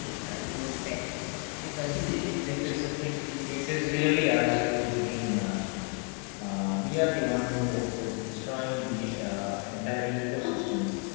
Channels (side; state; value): right; quieter; 38.5 dB